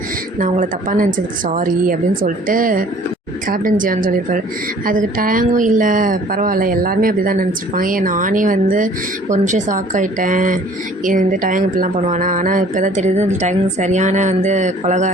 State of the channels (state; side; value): normal; both; correlation 0.53